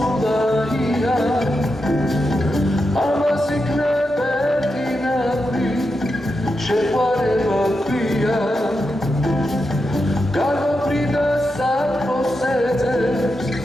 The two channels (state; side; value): normal; both; correlation 0.87